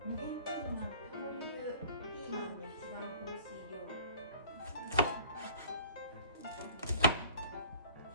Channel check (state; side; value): inverted; both; correlation -0.48